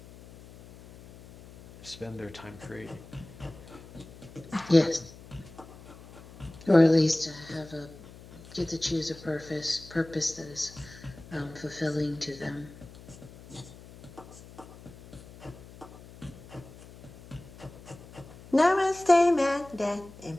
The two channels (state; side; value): noise; left; hum, 19 dB below the sound